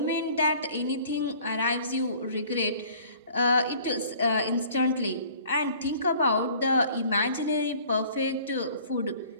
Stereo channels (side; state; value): both; inverted; correlation -0.52